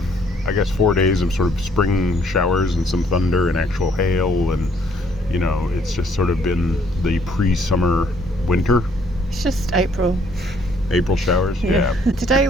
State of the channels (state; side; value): normal; both; correlation 0.65